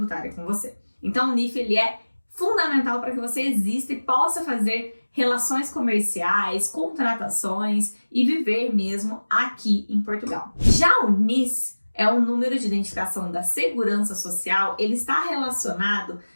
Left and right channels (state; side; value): inverted; both; correlation -1.00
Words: com você. Então, o NIF ele é fundamental para que você exista e possa fazer relações comerciais, contratações e viver mesmo aqui em Portugal. Já o NIS é o número de identificação da Segurança Social, ele está relacionado,